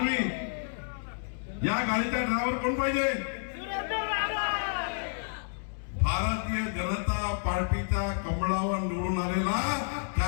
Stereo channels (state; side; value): silent; right; digital silence